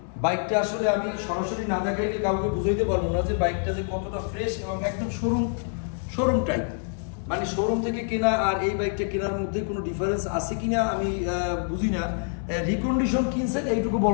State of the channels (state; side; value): silent; right; 59 dB below the other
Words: বাইকটা আসলে আমি সরাসরি না দেখাইলে কাউকে বুঝাইতে পারবো না যে বাইকটা যে কতটা ফ্রেশ এবং একদম শোরুম টাইপ। মানে শোরুম থেকে কেনা আর এই বাইকটা কেনার মধ্যে কোনো ডিফারেন্স আছে কিনা আমি বুঝি না। রিকন্ডিশন কিনছেন এইটুকু